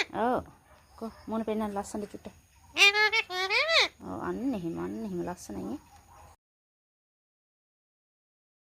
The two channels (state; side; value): identical; both; correlation 1.00